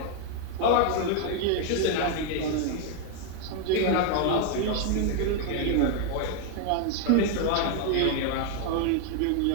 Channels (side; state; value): both; different; correlation 0.00